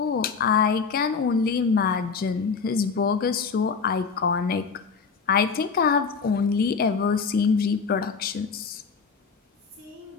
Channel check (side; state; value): right; quieter; 5.4 dB